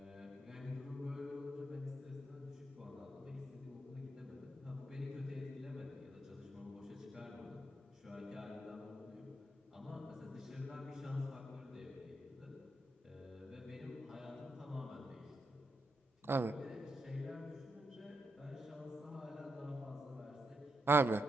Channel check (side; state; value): both; normal; correlation 0.82